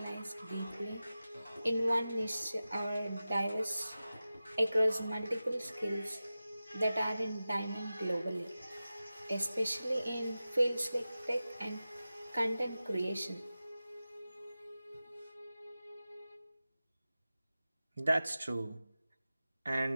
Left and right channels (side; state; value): both; inverted; correlation -0.95